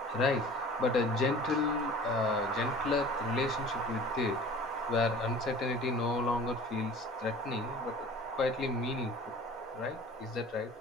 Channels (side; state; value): both; normal; correlation 0.44